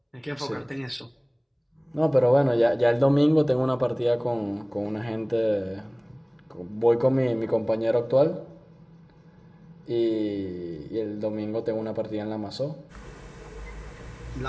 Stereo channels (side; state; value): both; identical; correlation 1.00